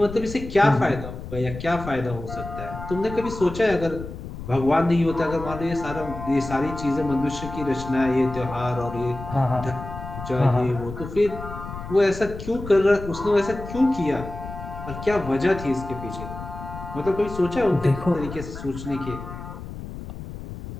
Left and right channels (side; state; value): left; noise; rumble, 10 dB below the sound